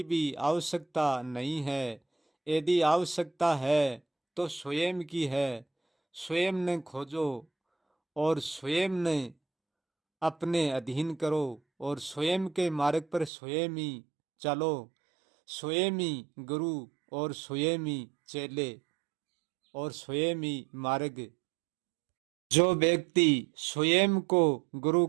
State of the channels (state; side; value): drops out; left; at 13.3 s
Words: भी आवश्यकता नहीं है। यदि आवश्यकता है तो स्वयं की है। स्वयं ने खोजो और स्वयं ने अपने अधीन करो और स्वयं के मार्ग पर स्वयं ही चलो। स्वयं ही गुरु और स्वयं ही चेले और स्वयं ही मार्ग। जो व्यक्ति स्वयं को गुरु